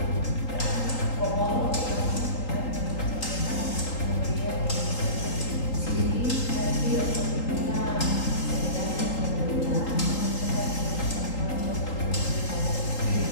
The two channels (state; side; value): late; right; 3.8 ms